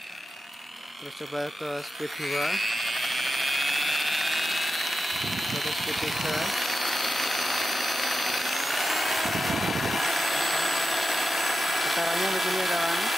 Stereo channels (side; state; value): both; normal; correlation 0.91